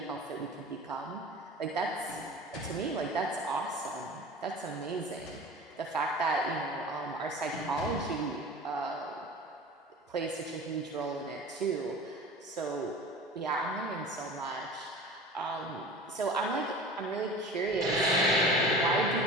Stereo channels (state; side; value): normal; both; correlation 0.38